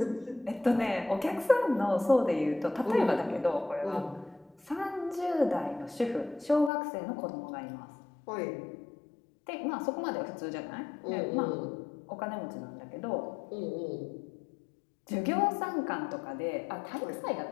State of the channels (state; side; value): drops out; right; at 6.7 s